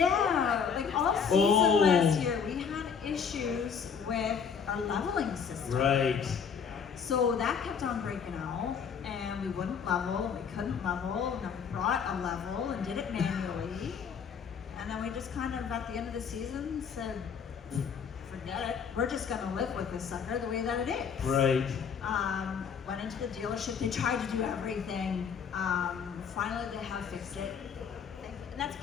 like all season last year, we had issues with our leveling system. Right. So that kept on breaking out, and we wouldn't level, and we couldn't level, and then we brought a level and did it manually. And then we just kind of, at the end of the season, said, forget it, we're just gonna live with this sucker the way that it is. Right. Went into the dealership, they tried to do everything. Finally, they have fixed it. And that's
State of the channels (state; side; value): quieter; right; 6.7 dB